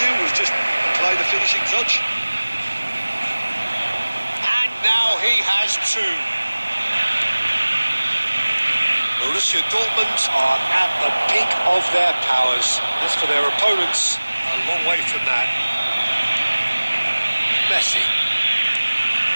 was just apply the finishing touch. And now he has 2. Borussia Dortmund are at the peak of their powers. As for their opponents, a long way from that. Messi.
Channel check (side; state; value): both; inverted; correlation -1.00